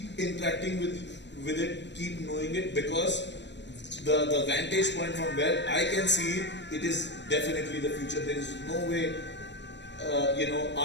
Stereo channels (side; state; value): right; late; 0.52 ms